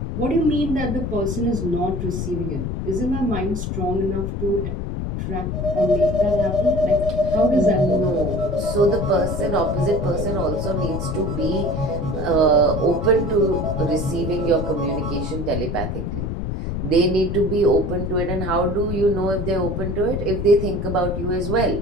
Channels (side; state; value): left; noise; rumble, 3 dB below the sound